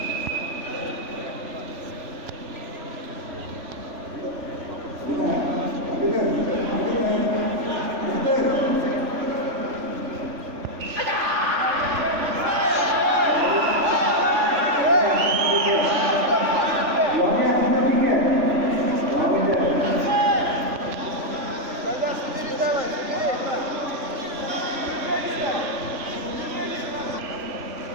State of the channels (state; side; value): late; left; 3.4 ms